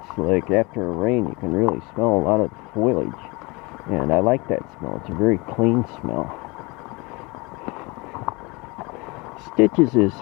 like after a rain you can really smell a lot of foliage, and I like that smell. It's a very clean smell. Stitches is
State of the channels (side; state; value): right; quieter; 26.1 dB